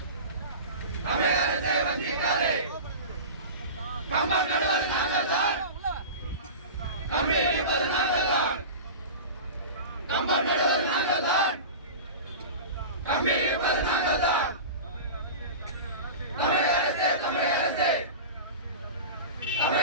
தமிழக அரசை வஞ்சிக்காதே. கம்பம் நடுவது நாங்கள் தான், கம்பி இழுப்பது நாங்கள் தான். கம்பம் நடுவது நாங்கள் தான், கம்பி இழுப்பது நாங்கள் தான். தமிழக அரசே தமிழக அரசே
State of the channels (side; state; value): both; inverted; correlation -0.31